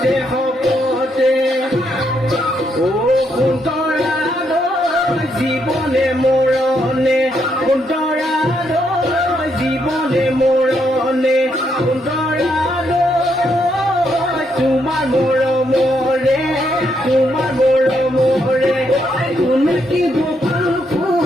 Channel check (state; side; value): normal; both; correlation 0.76